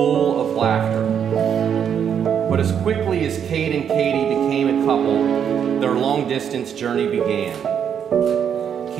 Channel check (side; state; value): left; quieter; 8.2 dB